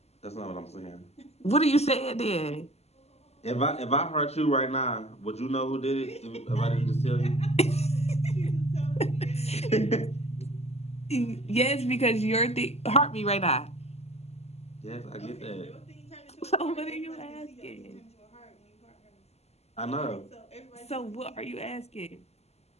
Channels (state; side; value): late; right; 0.30 ms